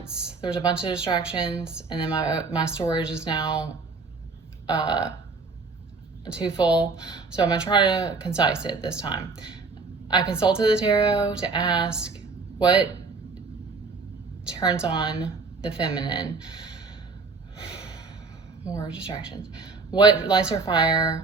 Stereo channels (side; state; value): left; quieter; 4.2 dB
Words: There was a bunch of distractions, and then my storage is now too full. So I'm going to try to concise it this time. I consulted the tarot to ask what turns on the feminine. More distractions. What lights her